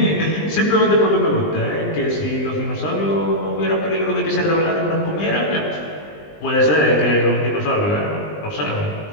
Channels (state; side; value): late; right; 20 ms